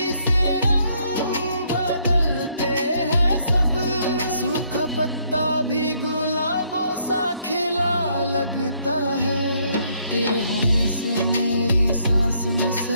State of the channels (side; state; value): both; inverted; correlation -0.69